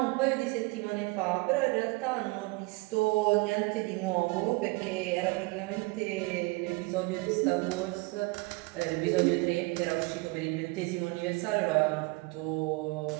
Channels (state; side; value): quieter; left; 25.0 dB